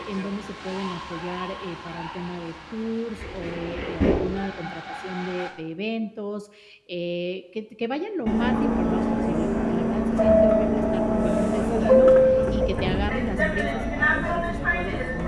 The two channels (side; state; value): both; identical; correlation 1.00